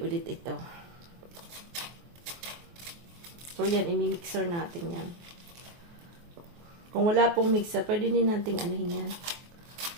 ulit ito. So, yan, i-mixer natin yan. Kung wala pong mixer, pwede din nating anuhin yan.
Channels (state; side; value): late; left; 24 ms